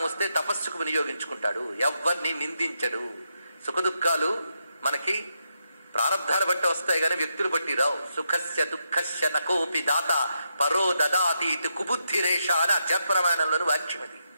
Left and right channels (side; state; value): both; inverted; correlation -0.82